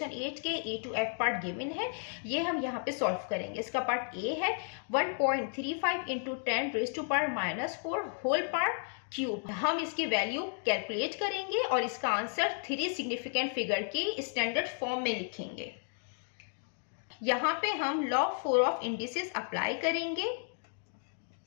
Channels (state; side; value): silent; right; 56 dB below the other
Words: 8 के A to F part given है, ये हम यहाँ पे सॉल्व करेंगे। इसका पार्ट A है 1.35 इंटू 10⁻⁻⁴ होल पावर क्यूब। हम इसकी वैल्यू कैलकुलेट करेंगे और इसका आंसर 3 सिग्निफिकेंट फिगर के स्टैंडर्ड फॉर्म में लिखेंगे। यहाँ पे हम लॉग 4 ऑफ इंडिसेस अप्लाई करेंगे।